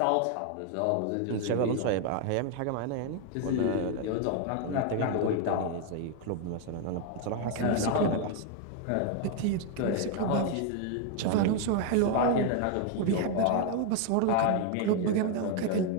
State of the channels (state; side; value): different; both; correlation 0.01